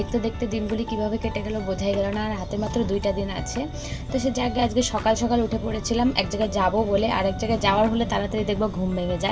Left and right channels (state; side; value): identical; both; correlation 1.00